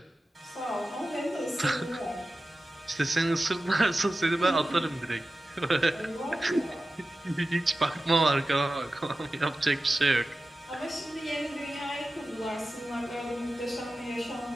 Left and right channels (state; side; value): normal; both; correlation 0.94